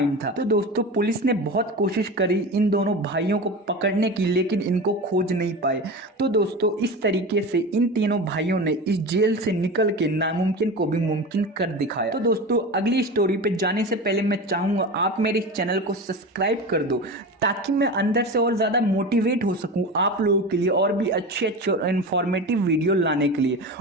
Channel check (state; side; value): normal; both; correlation 0.28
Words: था। तो दोस्तों पुलिस ने बहुत कोशिश करी इन दोनों भाइयों को पकड़ने की, लेकिन इनको खोज नहीं पाए। तो दोस्तों इस तरीके से इन तीनों भाइयों ने इस जेल से निकल के नामुमकिन को भी मुमकिन कर दिखाया। तो दोस्तों अगली स्टोरी पे जाने से पहले मैं चाहूंगा आप मेरे इस चैनल को सब्सक्राइब कर दो, ताकि मैं अंदर से और ज्यादा मोटिवेट हो सकूं आप लोगों के लिए और भी अच्छे अच्छे और इन्फॉर्मेटिव वीडियो लाने के लिए।